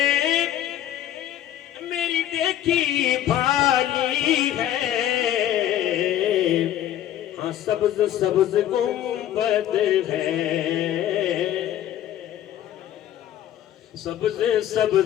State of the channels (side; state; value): right; quieter; 11.8 dB